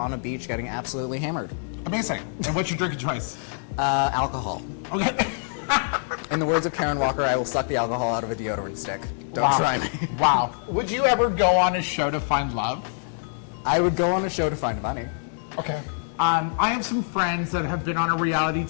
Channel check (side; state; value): right; silent; digital silence